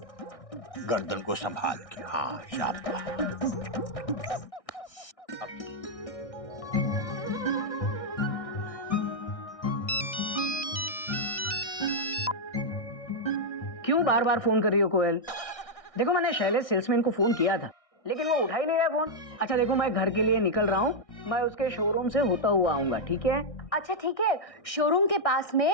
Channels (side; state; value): right; late; 1.6 ms